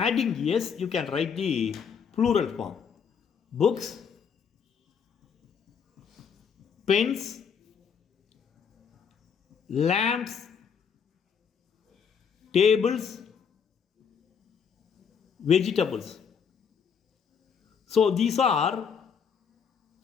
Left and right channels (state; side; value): quieter; right; 6.8 dB